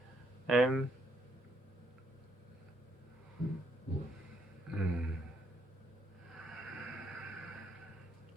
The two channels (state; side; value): normal; both; correlation 0.72